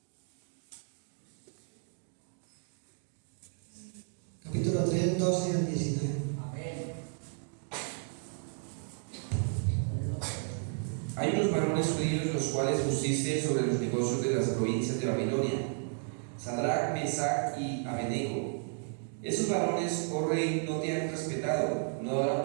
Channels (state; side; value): silent; left; 56 dB below the other